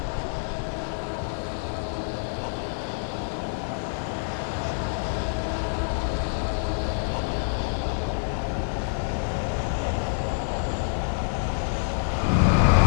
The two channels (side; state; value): right; silent; 56 dB below the other